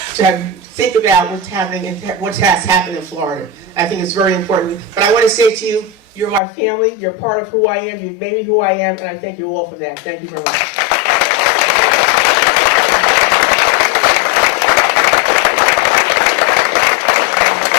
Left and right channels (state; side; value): drops out; right; at 6.4 s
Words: to think about what's happening and what has happened in Florida. I think it's very important. But I want to say to you, you're my family, you're part of who I am, you've made me who I am, and I thank you all for that. Thank you very much.